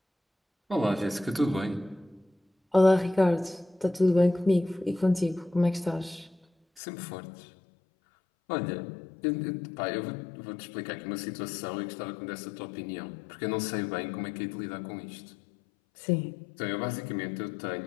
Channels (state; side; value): drops out; right; at 6.8 s